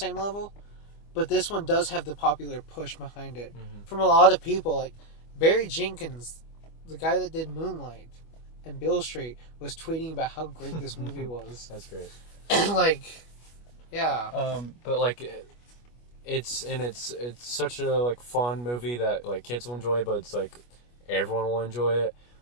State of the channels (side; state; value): right; late; 25 ms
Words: level. But this one does have the popular push behind it from a lot of people. Like Barry Jenkins, the guy that did Moonlight and Beale Street, was tweeting about how great this movie was. That's great. And like, yeah. But like, it's such a like fun movie that like kids will enjoy, but it's like everyone will enjoy it.